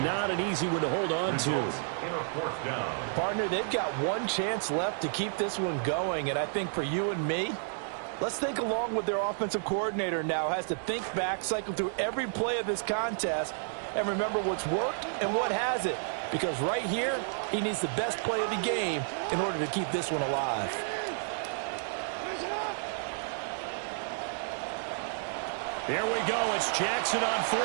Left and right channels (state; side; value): silent; left; digital silence